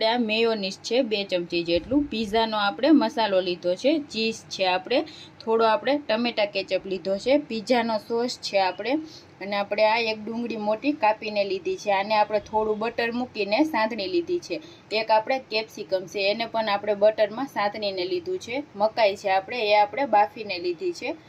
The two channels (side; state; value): both; identical; correlation 1.00